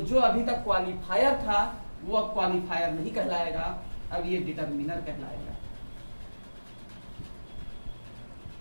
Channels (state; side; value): inverted; both; correlation -1.00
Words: अभी तक क्वालिफायर था वो अब क्वालिफायर नहीं कहलाएगा, अब ये डिटरमिनर कहलाएगा।